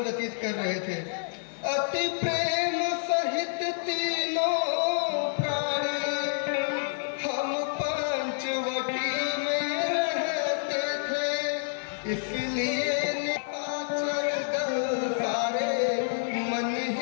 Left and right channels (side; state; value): right; silent; digital silence